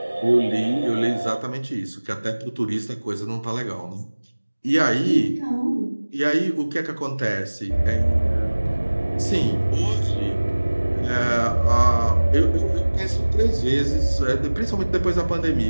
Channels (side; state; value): both; inverted; correlation -1.00